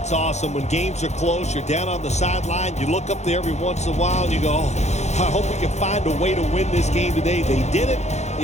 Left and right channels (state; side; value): late; right; 0.33 ms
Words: awesome. When games are close, you're down on the sideline. You look up there every once in a while, and you go, oh, I hope we can find a way to win this game today. They did it.